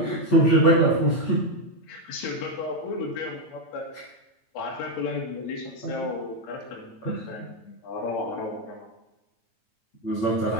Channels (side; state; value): right; late; 8.9 ms